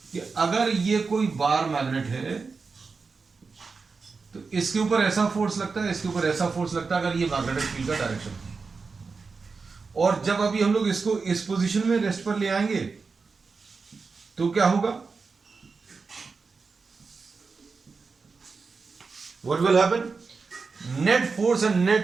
कि अगर ये कोई बार मैग्नेट है तो इसके ऊपर ऐसा फोर्स लगता है, इसके ऊपर ऐसा फोर्स लगता है, अगर ये मैग्नेटिक फील्ड का डायरेक्शन है। और जब अभी हम लोग इसको इस पोजीशन में रेस्ट पर ले आएंगे तो क्या होगा? What will happen? Net force and net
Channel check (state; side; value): quieter; left; 4.6 dB